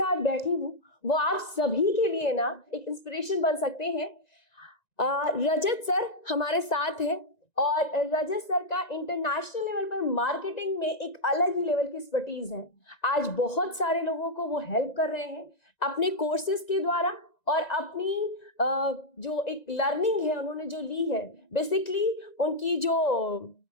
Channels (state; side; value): late; right; 1.9 ms